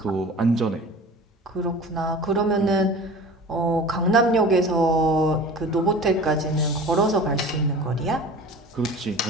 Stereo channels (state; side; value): normal; both; correlation 0.39